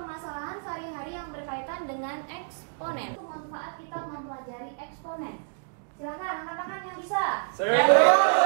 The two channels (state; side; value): silent; left; digital silence